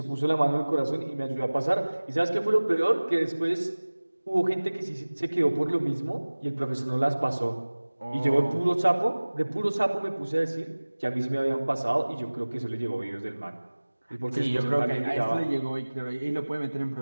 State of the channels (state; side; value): inverted; both; correlation -1.00